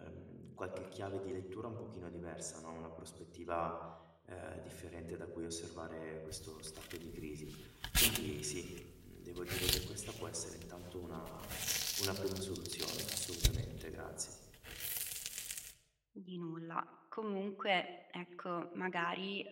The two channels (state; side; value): identical; both; correlation 1.00